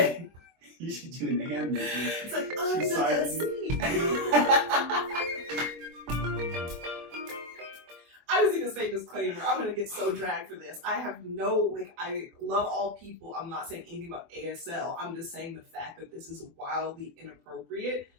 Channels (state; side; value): late; left; 24 ms